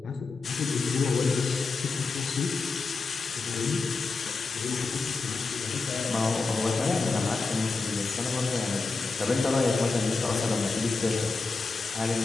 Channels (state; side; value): quieter; right; 4.0 dB